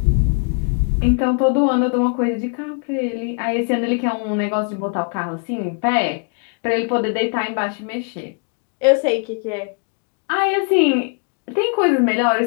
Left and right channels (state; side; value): quieter; right; 38.4 dB